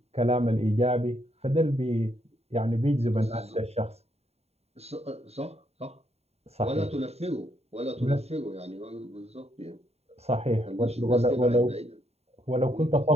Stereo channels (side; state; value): left; late; 0.30 ms